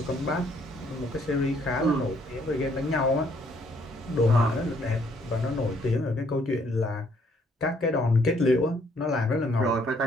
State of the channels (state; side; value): normal; both; correlation 0.66